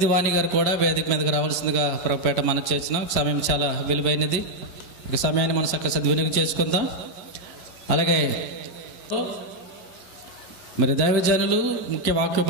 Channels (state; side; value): late; right; 11 ms